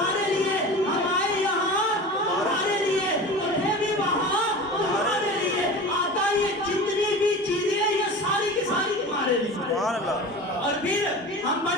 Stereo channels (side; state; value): both; normal; correlation 0.34